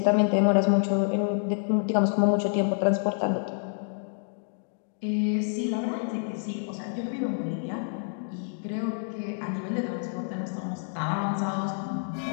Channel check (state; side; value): silent; right; digital silence